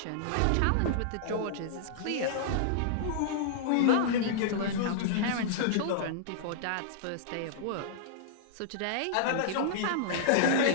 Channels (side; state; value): both; different; correlation -0.02